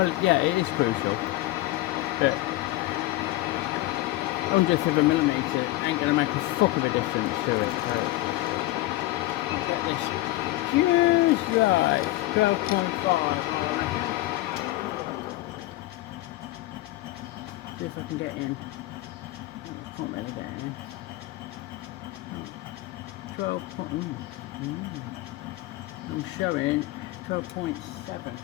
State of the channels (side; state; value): right; quieter; 17.8 dB